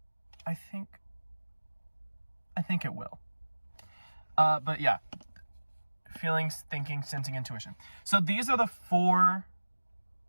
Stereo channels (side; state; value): both; inverted; correlation -1.00